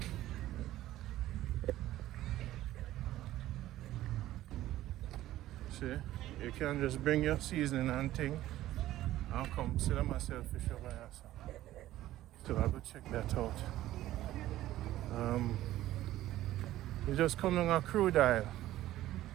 see, you can just bring your seasoning and thing I'll come see them myself fish over here. So I'll go check that out. We just come on a crude aisle.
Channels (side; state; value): left; quieter; 14.6 dB